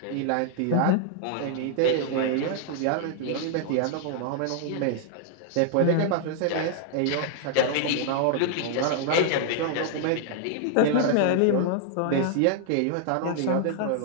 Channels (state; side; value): different; both; correlation 0.00